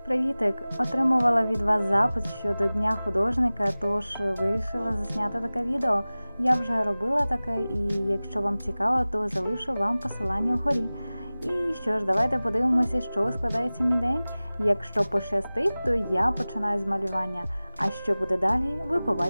Привітик! Отримувала від вас запит щодо Дня художника, тож вирішила засняти таке відео. Я вже робила таке, і якщо вам цікаво, то залишу вам посилання вгорі. І що ж, давайте подивимося, що складається мій день. Якщо пощастить, то я починаю з малювання, а що буде далі, ви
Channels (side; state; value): both; inverted; correlation -0.98